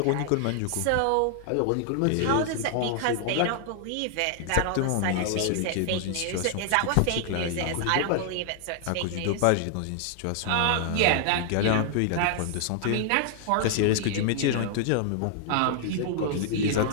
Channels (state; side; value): different; both; correlation 0.00